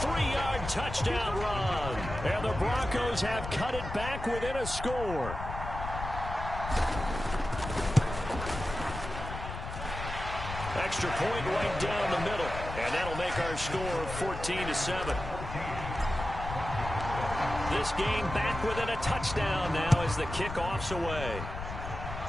touchdown run. And the Broncos have cut it back within a score. Extra point right down the middle. And that'll make our score 14-7. This game back within a touchdown now as the kickoff's away.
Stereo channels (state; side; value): noise; left; rumble, 8 dB below the sound